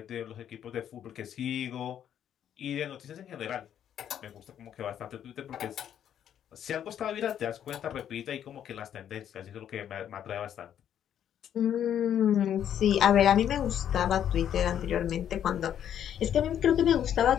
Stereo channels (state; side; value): quieter; right; 9.8 dB